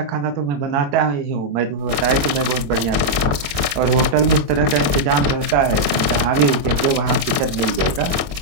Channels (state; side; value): late; left; 21 ms